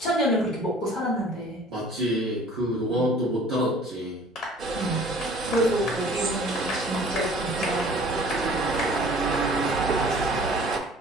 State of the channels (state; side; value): normal; both; correlation 0.50